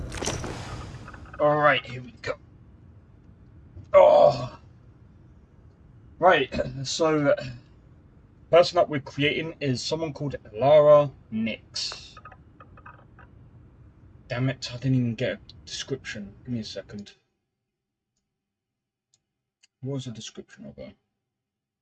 Alright, here we go. Oh! Right, so... person that we're creating is someone called Lara Nix. Damn it, I didn't even get a description. Give me a second. What was the description of her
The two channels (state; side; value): identical; both; correlation 1.00